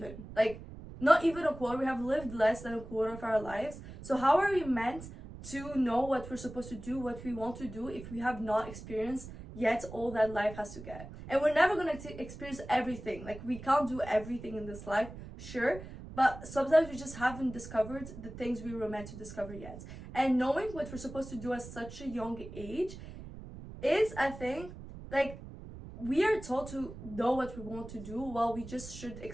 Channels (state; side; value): noise; right; rumble, 13 dB below the sound